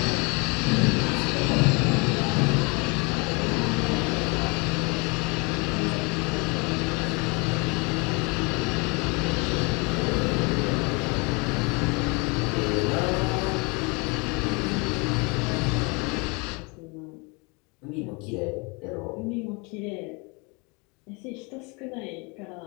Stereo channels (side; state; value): right; quieter; 30.0 dB